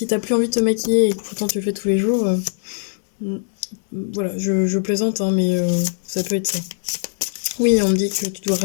t'as plus envie de te maquiller et que pourtant tu le fais tous les jours, voilà, je plaisante, hein, mais ça peut être ça. Oui, on me dit que tu dois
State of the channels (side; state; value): right; silent; digital silence